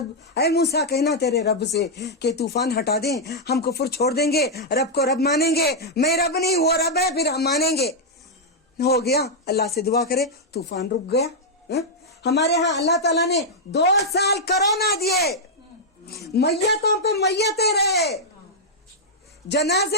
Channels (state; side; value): normal; both; correlation -0.04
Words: اے موسیٰ کہنا تیرے رب سے کہ طوفان ہٹا دیں, ہم کفر چھوڑ دیں گے, رب کو رب مانیں گے. میں رب نہیں وہ رب ہے, پھر ہم مانیں گے. ہو گیا, اللہ سے دعا کرے, طوفان رک گیا. ہمارے ہاں اللہ تعالیٰ نے 2 سال کرونا دیے, میتوں پہ میتیں رہے,